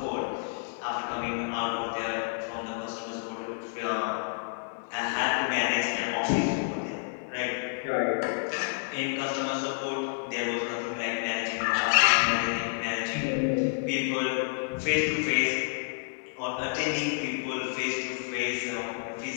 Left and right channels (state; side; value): silent; right; 58 dB below the other